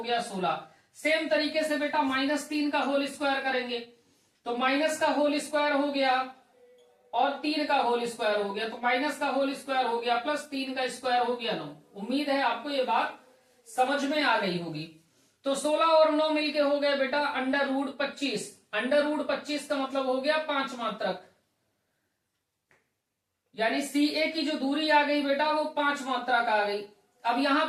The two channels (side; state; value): both; identical; correlation 1.00